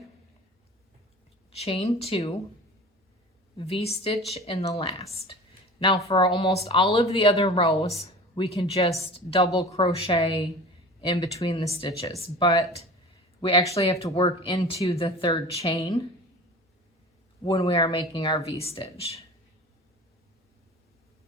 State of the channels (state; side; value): normal; both; correlation 0.38